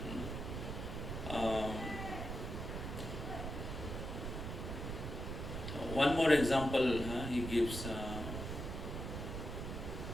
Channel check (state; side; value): noise; right; rumble, 5 dB below the sound